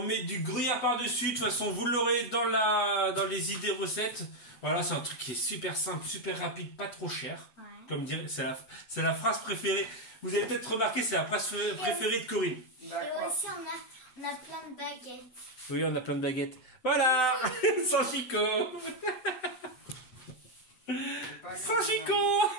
du gruyère par-dessus. De toute façon, vous l'aurez dans les idées recettes. Voilà, c'est un truc qui est super simple, super rapide, pas trop cher. Ouais. Comme dire, c'est la phrase préférée. Vous avez peut-être remarqué, c'est la phrase préférée de Corinne. Et aussi, on a plein de baguettes. Oui, on a plein de baguettes. Voilà. Sans Chico. Sans Chico.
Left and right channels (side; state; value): right; late; 8.1 ms